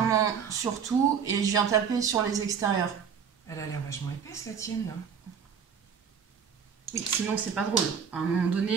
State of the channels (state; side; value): quieter; left; 7.0 dB